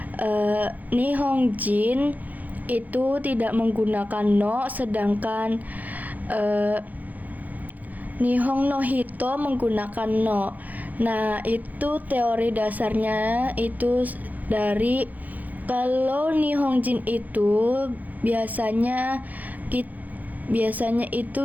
Nihonjin itu tidak menggunakan no, sedangkan Nihon no hito menggunakan no. Nah, itu teori dasarnya itu dari kalau Nihonjin itu biasanya itu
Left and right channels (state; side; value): late; left; 0.081 ms